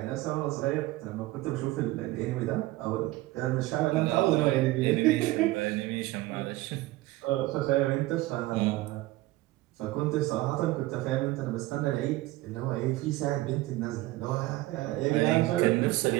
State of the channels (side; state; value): left; quieter; 18.3 dB